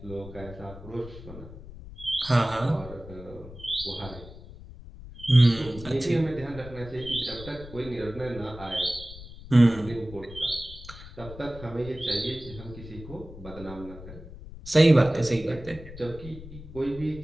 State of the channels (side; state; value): left; noise; rumble, 15 dB below the sound